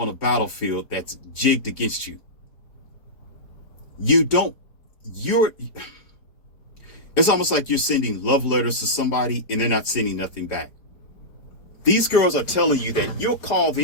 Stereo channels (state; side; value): late; right; 4.9 ms